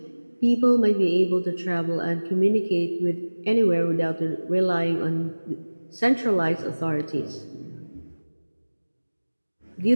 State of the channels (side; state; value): both; inverted; correlation -1.00